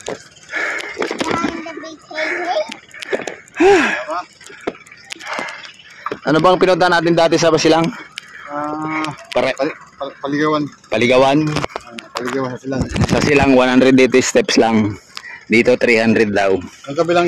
Ano bang pinunta natin dati sa Basilang? Paligawan. Paligawan. Paligawan sa silang. Sa Silang 180 steps lang. Dito 300 daw. Ang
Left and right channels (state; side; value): identical; both; correlation 1.00